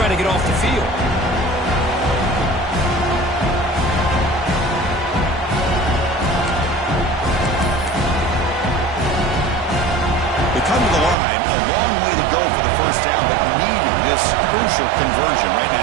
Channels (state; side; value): drops out; left; at 11.2 s